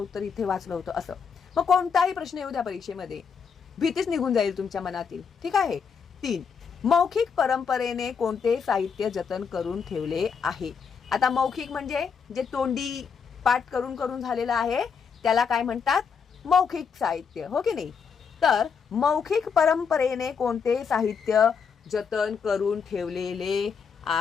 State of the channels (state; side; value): quieter; right; 6.3 dB